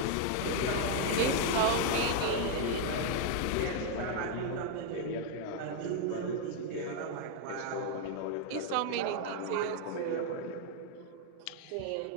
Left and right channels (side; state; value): both; different; correlation 0.00